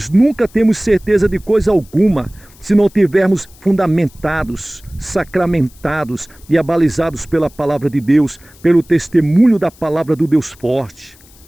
nunca temos certeza de coisa alguma se não tivermos fundamentados, sacramentados e abalizados pela palavra de Deus, pelo testemunho da palavra do Deus forte.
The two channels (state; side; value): noise; left; hiss, 26 dB below the sound